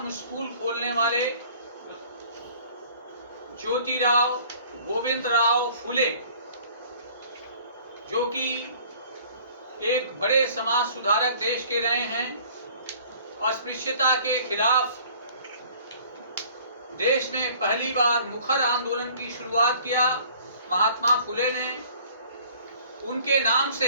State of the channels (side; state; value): both; inverted; correlation -0.52